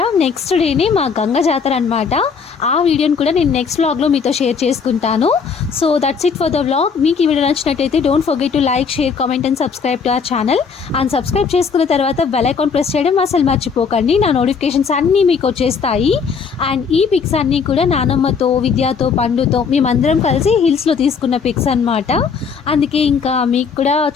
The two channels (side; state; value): right; quieter; 5.8 dB